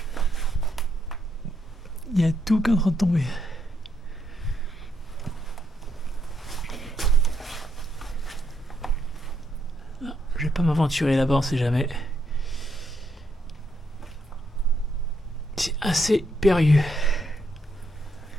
Il y a tout qui est en train de tomber. Non, je vais pas m'aventurer là-bas, on sait jamais. C'est assez périlleux.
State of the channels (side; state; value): both; normal; correlation 0.77